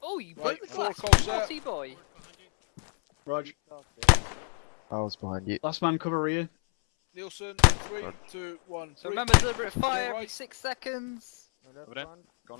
Oh, you broke the glass. Naughty boy. Ward behind you. Rog. I was behind you. Last man cover Ian. Nielsen, 3, 2, 1. So remember, deliberate fire every 6 seconds. Over there. Go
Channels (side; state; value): right; silent; 59 dB below the other